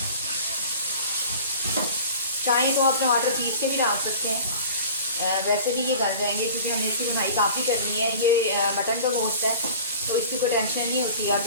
चाहें तो आप टमाटर पीस के भी डाल सकते हैं, वैसे भी ये गल जाएंगे क्योंकि हमें इसकी बुनाई काफ़ी करनी है। ये मटन का गोश्त है तो इसकी कोई टेंशन नहीं होती, आप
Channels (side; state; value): both; inverted; correlation -0.42